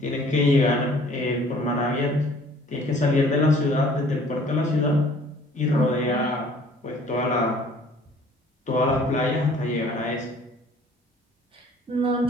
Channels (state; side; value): normal; both; correlation 0.54